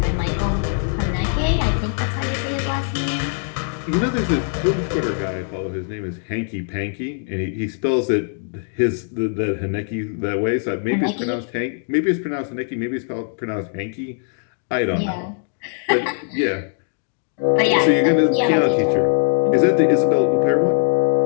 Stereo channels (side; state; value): right; silent; 65 dB below the other